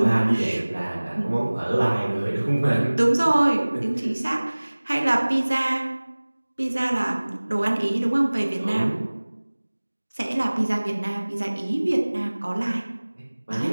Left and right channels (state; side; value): inverted; both; correlation -1.00